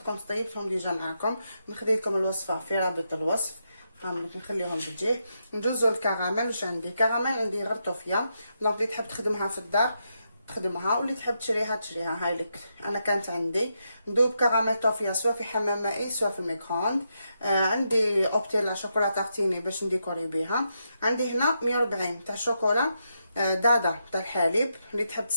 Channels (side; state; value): both; inverted; correlation -0.83